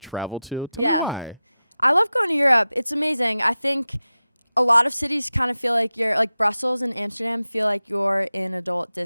travel to. Yeah. I love going to Europe. It's amazing. I think a lot of cities kind of feel like you're, like Brussels and Amsterdam feel like you're in adult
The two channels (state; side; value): inverted; both; correlation -0.94